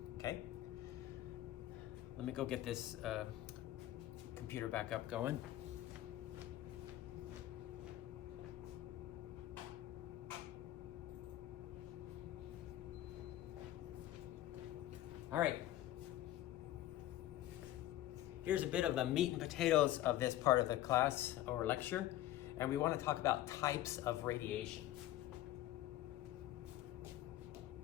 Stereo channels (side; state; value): right; quieter; 14.3 dB